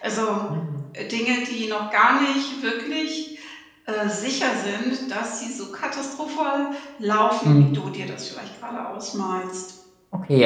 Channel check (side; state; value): both; identical; correlation 1.00